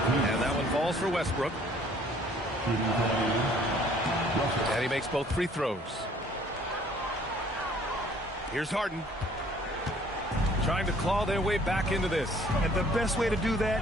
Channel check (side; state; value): both; normal; correlation 0.58